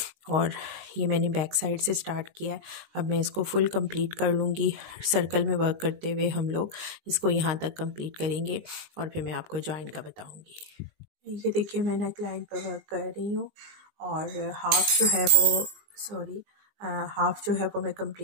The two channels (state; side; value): late; left; 19 ms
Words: और ये मैंने बैक साइड से स्टार्ट किया है, अब मैं इसको फुल कंप्लीट कर लूँगी। सर्कल में वर्क करते हुए हम लोग इसको यहाँ तक कंप्लीट करेंगे और फिर मैं आपको जॉइन का बताऊँगी। ये देखिए मैं नेक लाइन पर वर्क कर रही हूँ, और हाफ जो है वो हाफ जो है वो मैं